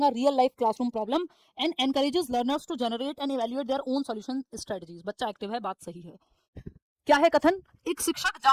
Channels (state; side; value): identical; both; correlation 1.00